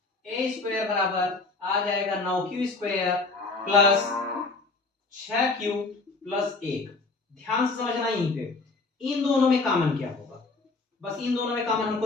ए स्क्वायर बराबर आ जाएगा 9q square plus 6q plus 1। ध्यान से समझना, यहीं पे इन दोनों में कॉमन क्या होगा, बस इन दोनों में कॉमन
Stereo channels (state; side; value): quieter; right; 3.7 dB